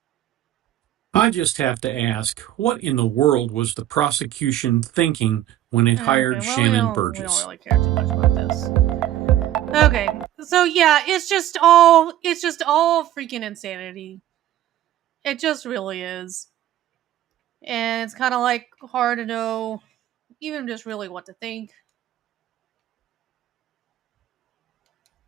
I just have to ask, what in the world was the prosecution thinking when it hired Shannon Burgess? We don't really care too much about this. Okay, so yeah, it's just all freaking insanity. It just really is. And it's kind of like hard to know even just really what to think.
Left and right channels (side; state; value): left; quieter; 12.8 dB